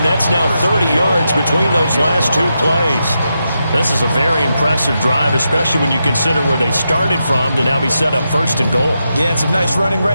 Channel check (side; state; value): both; inverted; correlation -0.86